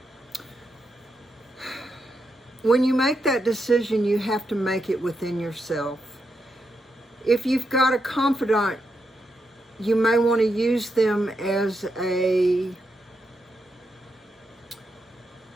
When you make that decision, you have to make it within yourself. If you've got a confidant, you may want to use them as a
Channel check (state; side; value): normal; both; correlation 0.84